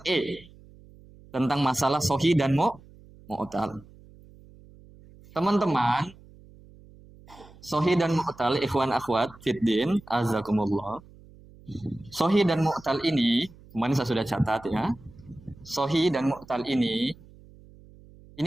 tentang masalah sohi dan mu'tal. Teman-teman, sohi dan mu'tal, ikhwan akhwat fiddin, azakumullah. Sohi dan mu'tal ini, kemarin saya sudah catat ya. Sohi dan mu'tal ini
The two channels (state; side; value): noise; right; hum, 23 dB below the sound